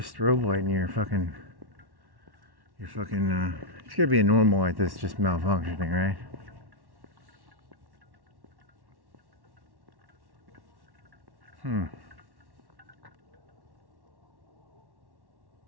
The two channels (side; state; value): left; late; 1.1 ms